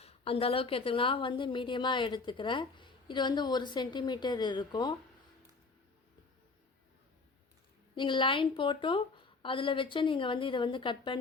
அந்த அளவுக்கு எடுத்துக்கலாம். நான் வந்து மீடியமாக எடுத்துக்கிறேன். இது வந்து 1 சென்டிமீட்டர் இருக்கும். நீங்கள் லைன் போட்டும் அதில் வச்சு நீங்கள் வந்து இதை வந்து கட்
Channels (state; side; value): quieter; right; 4.0 dB